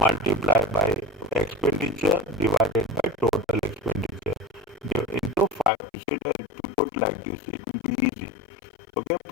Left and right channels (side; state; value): right; drops out; at 5.7 s